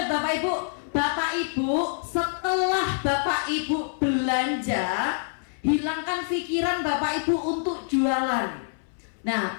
Bapak Ibu. Bapak Ibu, setelah Bapak Ibu belanja, hilangkan pikiran Bapak Ibu untuk jualan. Nah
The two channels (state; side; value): silent; right; 60 dB below the other